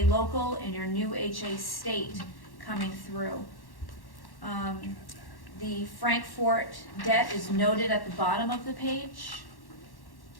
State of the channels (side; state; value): right; late; 1.1 ms